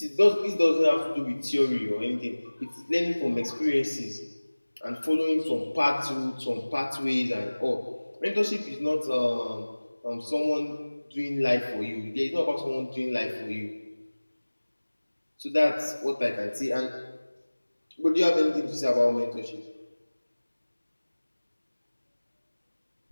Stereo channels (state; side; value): inverted; both; correlation -1.00